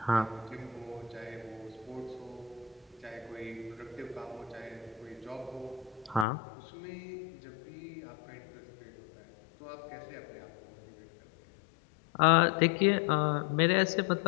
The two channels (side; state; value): right; drops out; at 6.2 s